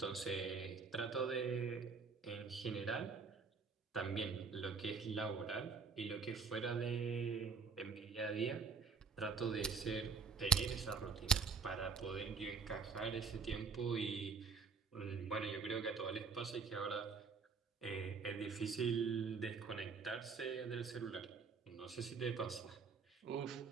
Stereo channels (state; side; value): quieter; left; 5.3 dB